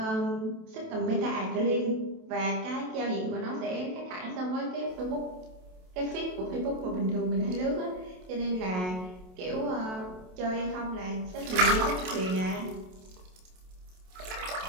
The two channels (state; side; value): late; left; 27 ms